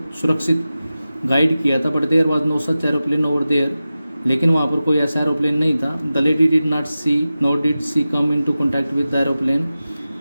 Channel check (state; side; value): inverted; both; correlation -0.94